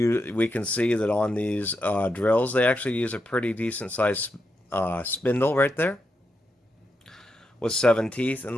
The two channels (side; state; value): both; normal; correlation 0.84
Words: can see that on these drills, they actually use a pretty decent sized spindle right there, with 7 teeth.